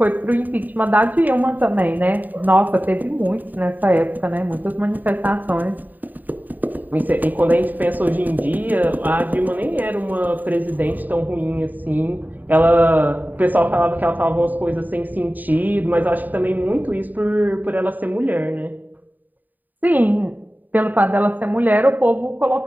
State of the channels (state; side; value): late; left; 0.086 ms